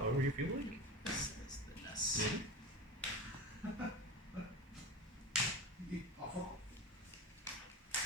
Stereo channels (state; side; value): normal; both; correlation 0.28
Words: you feel like. This.